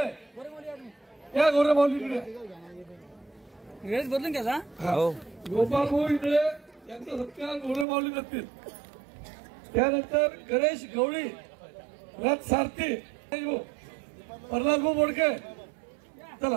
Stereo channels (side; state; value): left; drops out; at 7.9 s